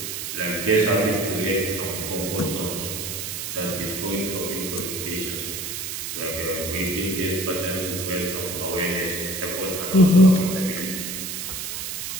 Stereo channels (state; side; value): noise; right; hiss, 5 dB below the sound